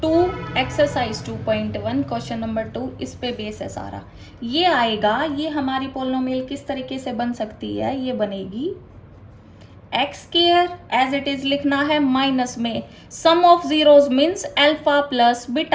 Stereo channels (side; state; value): both; identical; correlation 1.00